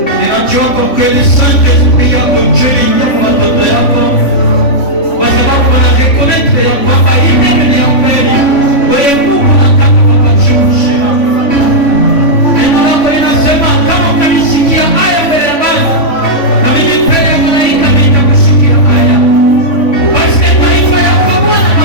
Ninajua kwa kweli Saint-Esprit yako juu ya watoto yako, kwa sababu wanareconnaître ya kwamba hii ni ya kweli. Wewe Mungu unataka kuwachukua. Neno lako linasema kama ukanisikia haya mbele ya Baba, na mimi mbele ya malaika nitakusikia haya. Basi taifa yako Bwana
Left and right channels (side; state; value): right; late; 3.5 ms